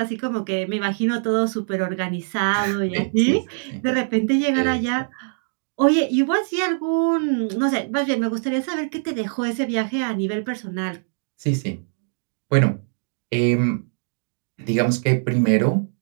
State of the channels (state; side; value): silent; left; digital silence